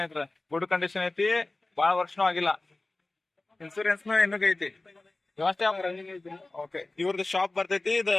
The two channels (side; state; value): right; quieter; 3.0 dB